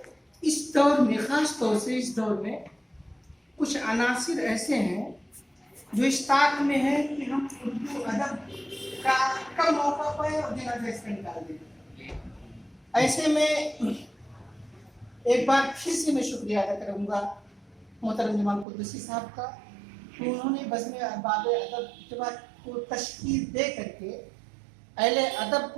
इस दौर में, ख़ास तौर से इस दौर में कुछ अनासिर ऐसे हैं जो इस ताक में है कि हम उर्दू अदब का कम मौका पाए और जनाजा इसका निकाल दें। ऐसे में एक बार फिर से मैं शुक्रिया अदा करूँगा मोहतरम जमाल कुद्दूसी साहब का, कि उन्होंने बज़्म अहबाब अदब जमात को तश्कील दे करके अहले अदब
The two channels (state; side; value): drops out; left; at 18.7 s